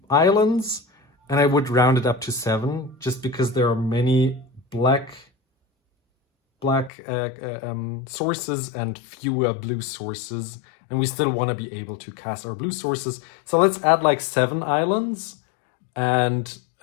islands. And I would round it up to 7, just because there are many black sources and fewer blue sources. And we still want to be able to cast our blue sources. So let's add like 7 islands and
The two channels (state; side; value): drops out; right; at 6.9 s